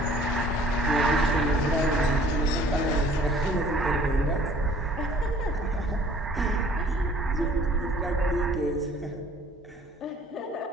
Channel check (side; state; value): both; normal; correlation 0.54